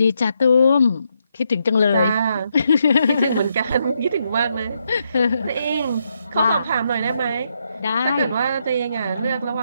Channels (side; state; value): both; inverted; correlation -0.79